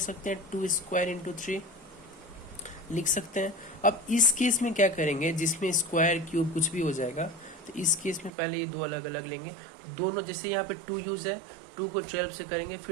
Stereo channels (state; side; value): drops out; left; at 8.3 s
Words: हैं, 2 स्क्वायर इंटू 3 लिख सकते हैं। अब इस केस में क्या करेंगे, जिसमें स्क्वायर क्यूब कुछ भी हो जाएगा, तो इस केस में पहले ये दो अलग अलग लेंगे। दोनों, जैसे यहाँ पे 2 यूज है, 2 को 12 से करेंगे,